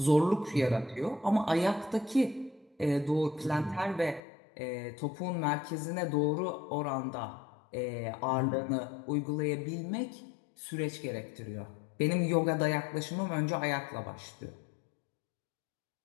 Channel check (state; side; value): drops out; right; at 4.2 s